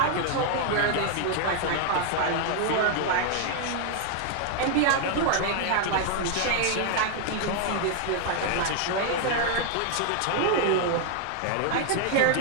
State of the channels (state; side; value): different; both; correlation 0.00